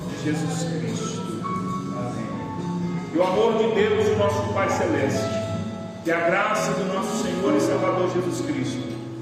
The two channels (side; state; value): both; identical; correlation 1.00